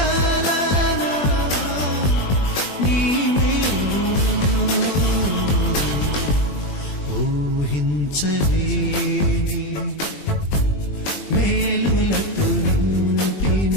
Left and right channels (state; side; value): late; right; 21 ms